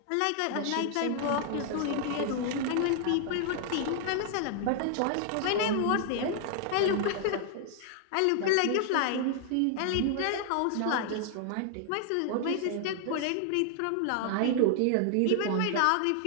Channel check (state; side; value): different; both; correlation 0.00